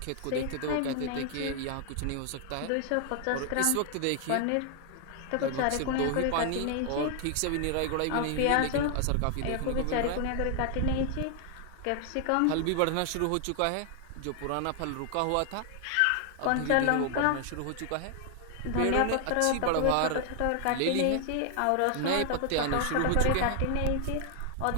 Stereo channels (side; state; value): both; different; correlation 0.00